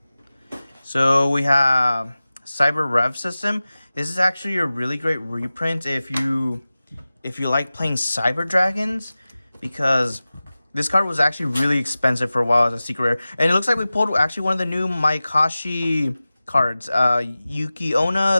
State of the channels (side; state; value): both; inverted; correlation -0.97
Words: So we have Cyber Rev System. This is actually a really great reprint if you like playing Cyber Dragons, because this card was actually really expensive for a while as a secret rare. And it looks like we pulled actually one of the new Mayakashi cards,